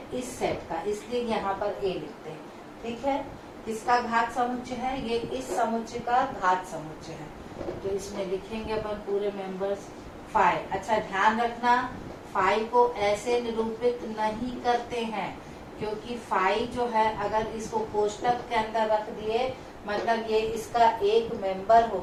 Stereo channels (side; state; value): both; identical; correlation 1.00